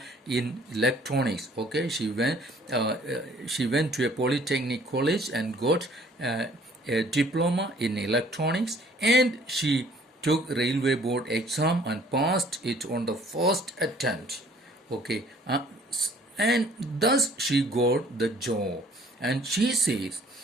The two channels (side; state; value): both; normal; correlation 0.57